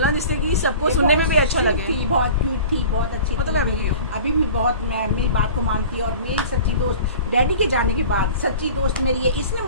जिससे कि सबको सुनने में भी अच्छा लगे। थी, बहुत क्यूट थी, बहुत अच्छी वो तो थी, मैं भी हूँ। अभी भी बहुत मेरी बात को मानती है। और मेरी सच्ची दोस्त, डैडी के जाने के बाद सच्ची दोस्त मेरी है, इसने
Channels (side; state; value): both; inverted; correlation -0.41